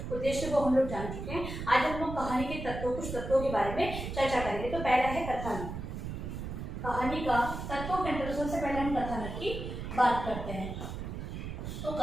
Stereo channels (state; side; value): noise; right; rumble, 6 dB below the sound